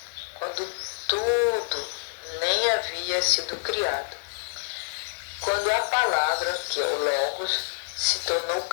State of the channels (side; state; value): right; silent; digital silence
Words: quando tudo nem havia sido criado. Quando a palavra, que é o Logos, se tornou